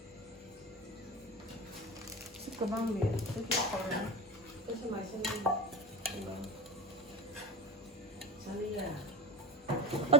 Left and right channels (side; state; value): both; normal; correlation 0.26